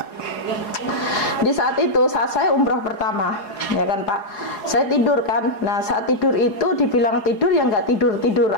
di saat itu, saat saya umroh pertama, ya kan Pak, saya tidur kan. Nah, saat tidur itu dibilang tidur ya nggak tidur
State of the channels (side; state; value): right; late; 4.8 ms